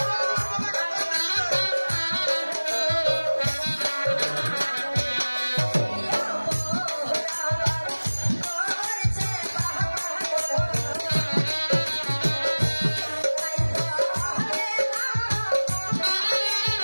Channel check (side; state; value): both; inverted; correlation -1.00